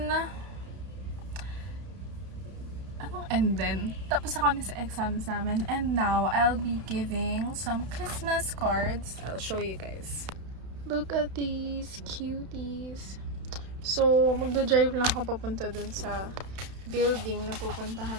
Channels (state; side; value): late; left; 31 ms